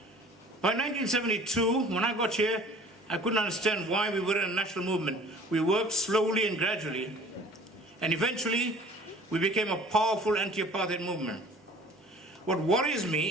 By 1972, when I got here, I couldn't understand why we were in a national movement. We worked slowly and gradually, and eventually we became a powerful anti-apartheid movement. What worries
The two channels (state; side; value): normal; both; correlation 0.49